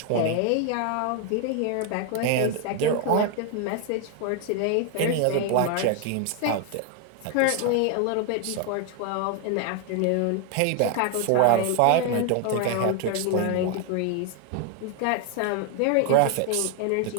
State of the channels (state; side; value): different; both; correlation 0.01